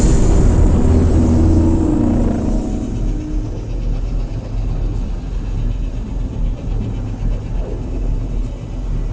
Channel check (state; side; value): identical; both; correlation 1.00